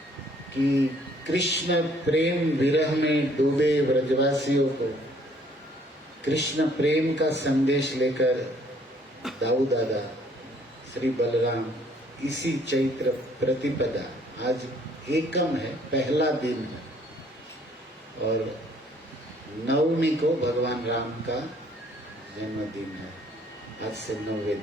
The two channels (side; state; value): both; normal; correlation 0.62